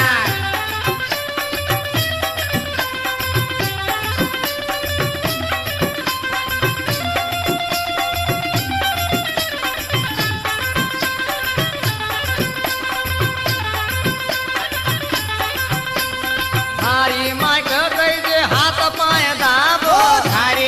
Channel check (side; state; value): both; identical; correlation 1.00